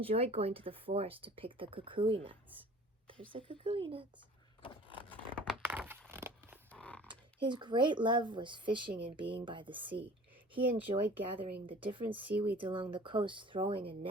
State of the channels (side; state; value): both; normal; correlation 0.46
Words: going to the forest to pick the kukui nuts. There's the kukui nuts. His great love was fishing and being by the sea. He enjoyed gathering the different seaweeds along the coast, throwing a